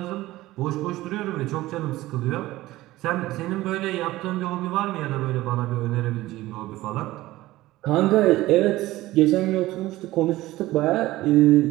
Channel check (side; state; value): left; quieter; 17.2 dB